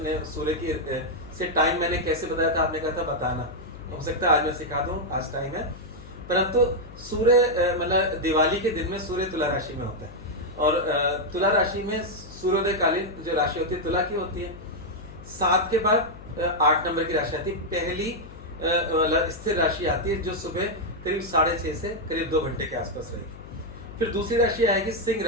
ने सूर्य की से टाइम मैंने कैसे बताया था, आपने कहा था बताना, हो सकता है आज मैं सिखा दूं, आज टाइम है। परंतु सूर्य मतलब दिवाली के दिन में सूर्य तुला राशि में होता है, और तुला राशि में सूर्योदय कालीन जो राशि होती है तुला की होती है। 7 के बाद 8 नंबर की राशि आती है, पहली मतलब स्थिर राशि आती है, जो सुबह करीब 6:30 से करीब 2 घंटे के आसपास रहेगी। फिर दूसरी राशि आएगी सिंह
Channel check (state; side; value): noise; left; hum, 16 dB below the sound